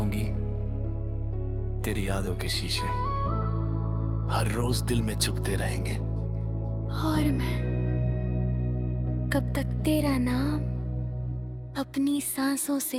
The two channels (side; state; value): both; identical; correlation 1.00